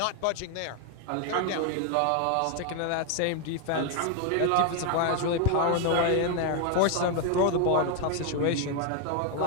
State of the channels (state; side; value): different; both; correlation 0.01